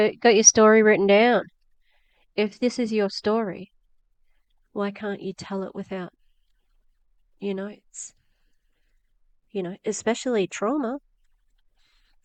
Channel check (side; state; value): both; identical; correlation 1.00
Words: got your story written down. If this is your story, why can't you tell it without notes? Especially trauma.